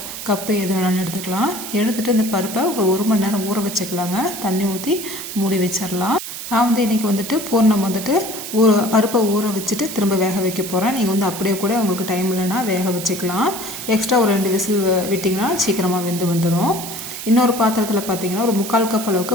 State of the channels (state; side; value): noise; right; hiss, 8 dB below the sound